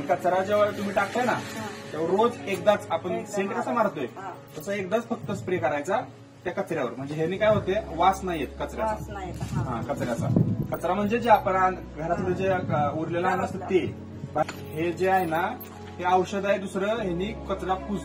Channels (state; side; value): identical; both; correlation 1.00